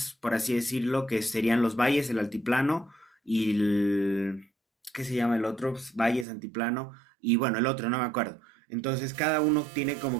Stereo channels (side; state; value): left; drops out; at 6.2 s